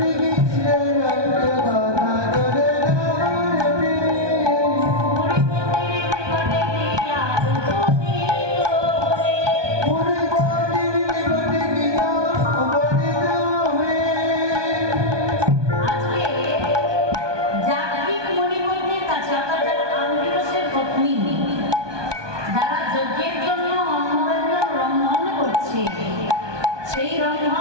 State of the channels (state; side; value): late; left; 1.2 ms